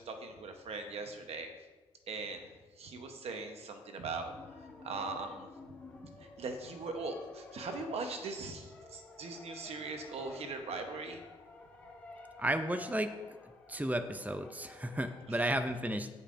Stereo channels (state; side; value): normal; both; correlation 0.62